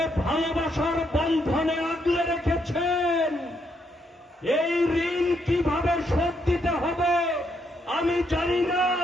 ভালোবাসার বন্ধনে আগলে রেখেছেন, এই ঋণ কিভাবে শোধ দিতে হবে আমি জানি না,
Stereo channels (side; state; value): both; normal; correlation 0.76